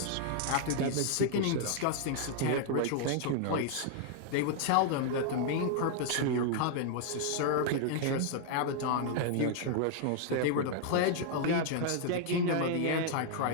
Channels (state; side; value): different; both; correlation -0.01